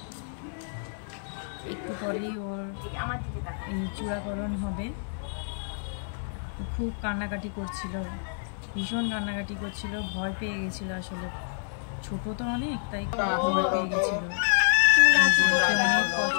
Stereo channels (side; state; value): right; silent; 59 dB below the other